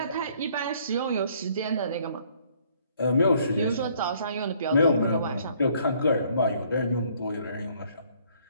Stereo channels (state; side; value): inverted; both; correlation -0.63